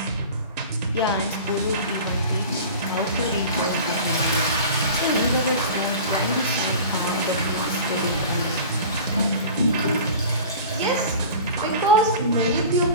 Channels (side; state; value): both; inverted; correlation -0.38